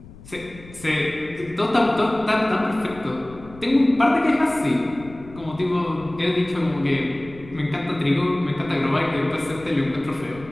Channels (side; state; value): left; noise; rumble, 19 dB below the sound